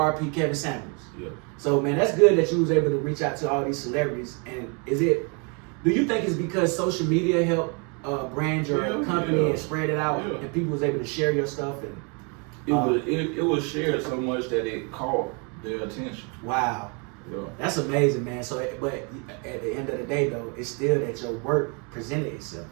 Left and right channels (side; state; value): left; quieter; 34.7 dB